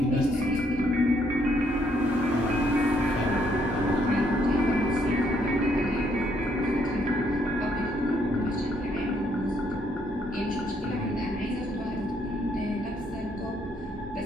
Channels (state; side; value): normal; both; correlation 0.71